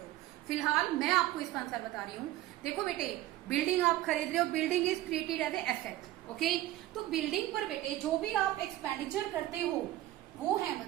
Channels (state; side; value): quieter; left; 15.2 dB